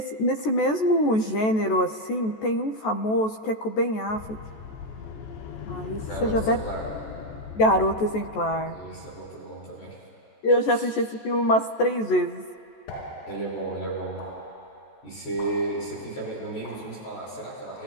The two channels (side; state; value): right; late; 14 ms